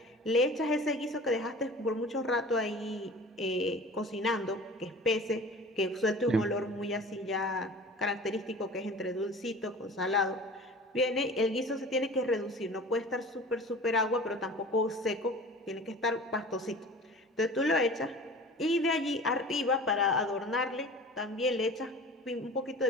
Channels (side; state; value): both; normal; correlation 0.40